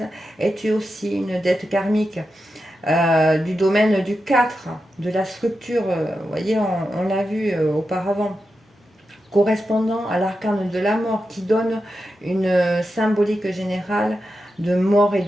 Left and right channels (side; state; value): both; normal; correlation 0.89